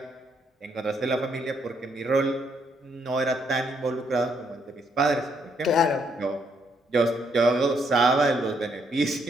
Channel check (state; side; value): normal; both; correlation 0.73